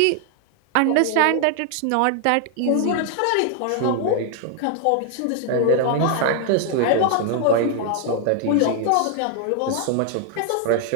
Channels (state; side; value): different; both; correlation 0.00